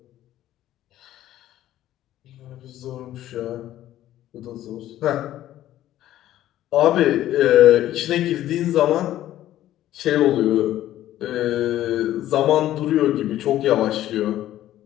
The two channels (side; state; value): right; quieter; 13.3 dB